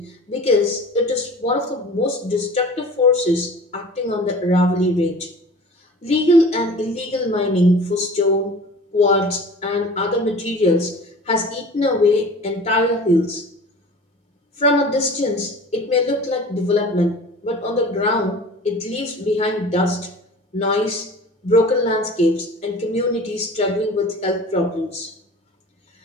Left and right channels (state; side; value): normal; both; correlation 0.41